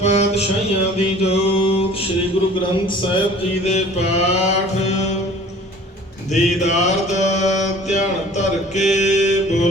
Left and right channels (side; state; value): both; normal; correlation 0.48